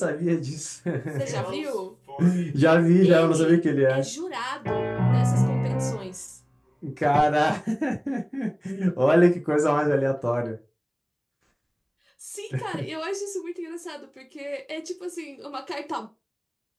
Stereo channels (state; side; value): identical; both; correlation 1.00